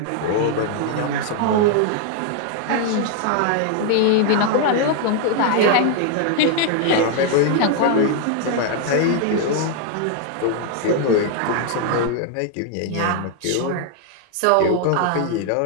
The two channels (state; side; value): different; both; correlation 0.00